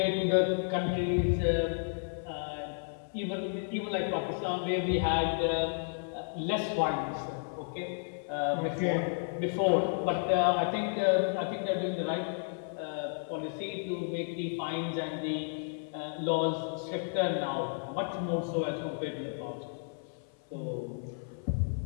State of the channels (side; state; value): right; silent; 55 dB below the other